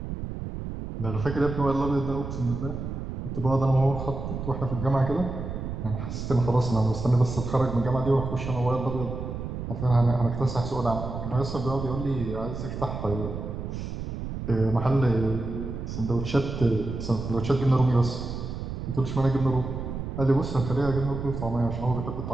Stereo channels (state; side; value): noise; right; rumble, 6 dB below the sound